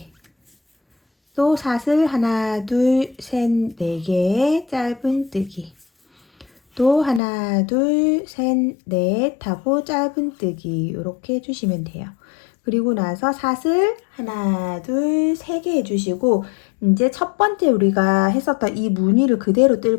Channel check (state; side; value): drops out; right; at 7.2 s